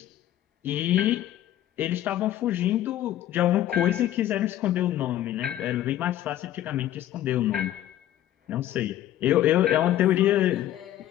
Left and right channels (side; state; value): right; quieter; 12.8 dB